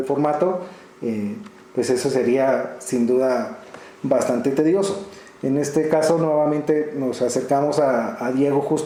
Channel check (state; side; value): identical; both; correlation 1.00